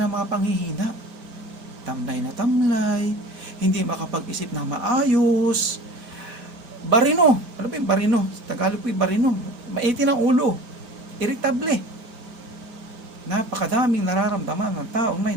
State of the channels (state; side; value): late; left; 5.1 ms